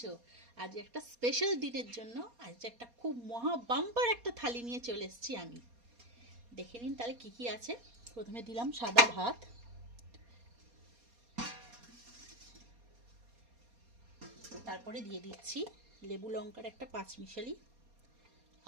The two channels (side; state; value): left; late; 4.2 ms